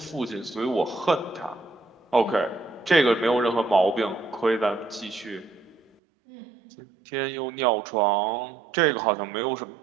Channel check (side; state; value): left; drops out; at 6.0 s